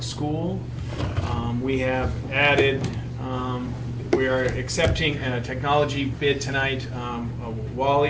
School. We have added, we are accepting a technology bid tonight,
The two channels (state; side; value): identical; both; correlation 1.00